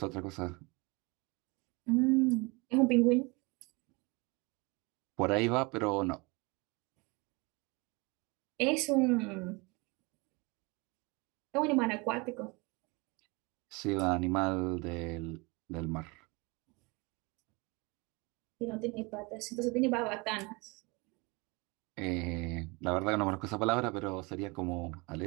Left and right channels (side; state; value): left; quieter; 27.1 dB